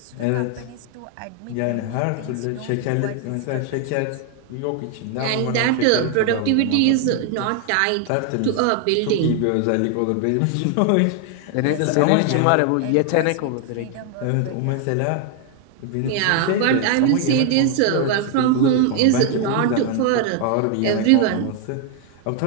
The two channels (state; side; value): different; both; correlation 0.00